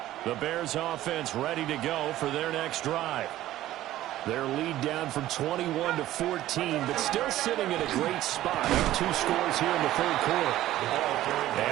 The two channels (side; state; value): left; quieter; 14.4 dB